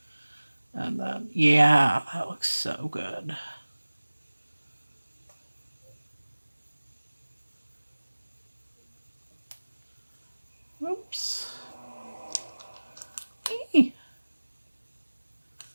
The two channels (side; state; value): both; inverted; correlation -1.00